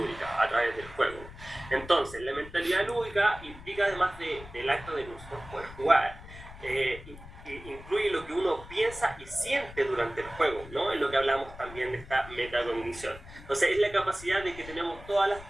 a través del juego. Entonces, la mentalidad lúdica implica, además del acto de nosotros poder jugar, incluye lo que uno piensa y siente durante el juego, ¿no? Es lo que hablamos también de esta metacognición. Entonces, es la capacidad de que tenemos todas las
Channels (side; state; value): left; noise; rumble, 16 dB below the sound